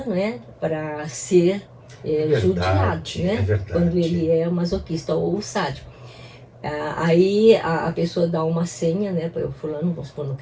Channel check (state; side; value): identical; both; correlation 1.00